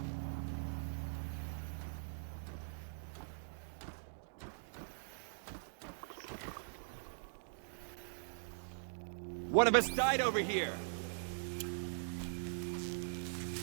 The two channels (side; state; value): left; silent; digital silence